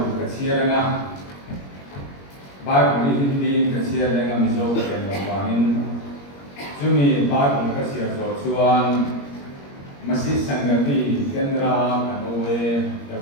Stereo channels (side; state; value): right; late; 21 ms